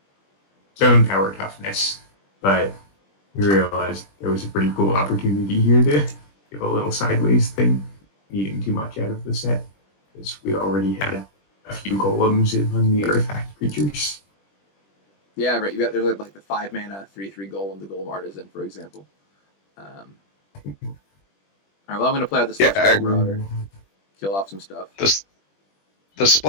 zone power toughness, but We realized there was a pretty cool opportunity here to give a little sideways thing, needing too much out of the set, because we already had a few golems among the artifact creatures. Yeah, right. There's like the 5 mana 3/3 golem, the golem artisan, for example. All right, well, I'm going to play out the Celestial Marauder, kill off some stuff. The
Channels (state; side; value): late; right; 20 ms